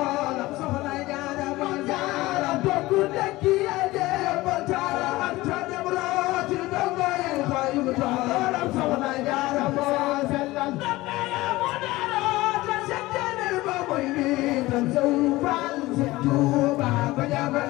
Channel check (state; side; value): quieter; right; 19.0 dB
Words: Jaara ma Jaara bokku dekki ade Maam Jaara anta dem rooti dongo yi xayu toolam soxna Jaara mo sellal dongo ya mo daro ta seddene ba moy ni tan sawu fal si Tuuba ko jabal